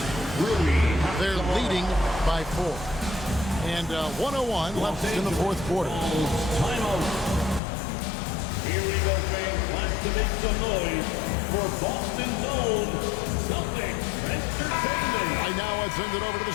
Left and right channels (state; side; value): drops out; right; at 7.6 s